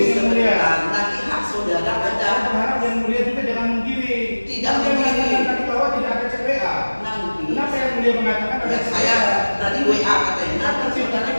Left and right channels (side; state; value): both; inverted; correlation -1.00